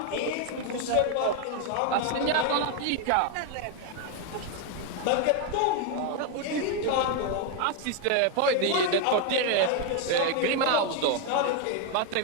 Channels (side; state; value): both; different; correlation 0.01